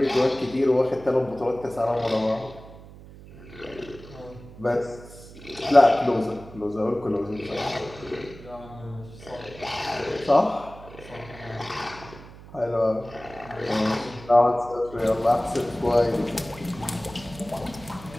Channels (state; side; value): noise; right; hum, 18 dB below the sound